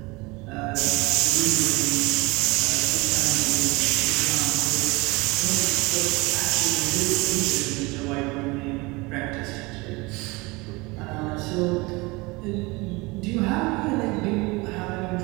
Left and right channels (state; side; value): quieter; left; 24.3 dB